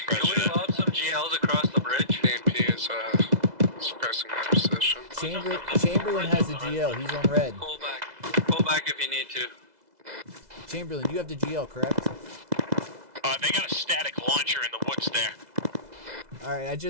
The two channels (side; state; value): left; late; 2.0 ms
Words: Can we lob some GLs across the bridge? AMP is suppressing my position. Chamberlain has the GL. He's on red. Pull back. Pull back if you need to. Chamberlain, you have the GL, correct? They got a static launcher in the woods there. All right, I